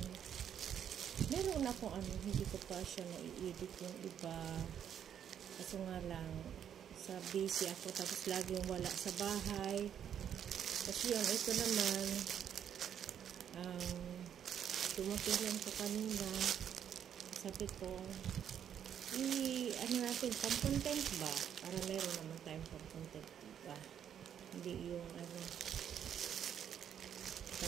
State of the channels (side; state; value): left; quieter; 9.1 dB